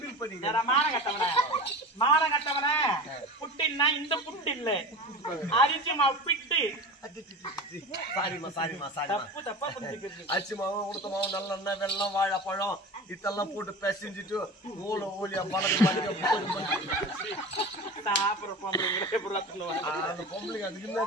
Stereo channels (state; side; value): normal; both; correlation 0.32